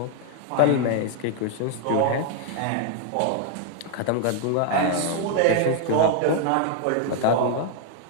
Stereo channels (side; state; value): both; different; correlation 0.00